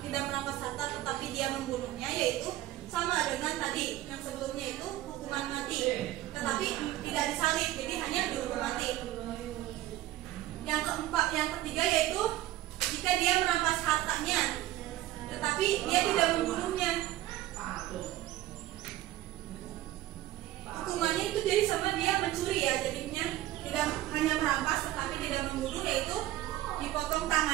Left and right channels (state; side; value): quieter; left; 15.0 dB